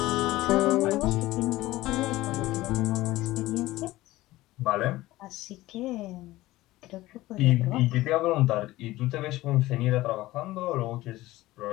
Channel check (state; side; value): quieter; right; 17.6 dB